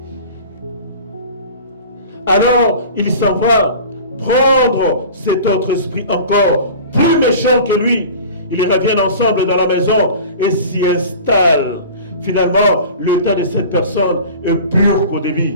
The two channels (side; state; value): both; inverted; correlation -0.39